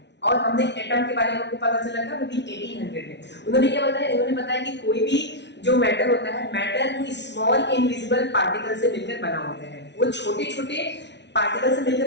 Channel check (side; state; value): right; late; 0.51 ms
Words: और हमने एटम के बारे में हमको पता चला था वो भी 1800 में. उन्होंने क्या बताया? उन्होंने बताया कि कोई भी जो मैटर होता है, मैटर वो स्मॉल इनविजिबल पार्टिकल से मिलकर बना होता है. वो छोटे छोटे पार्टिकल से